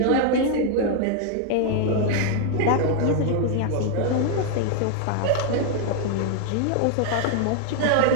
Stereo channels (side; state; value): both; different; correlation 0.00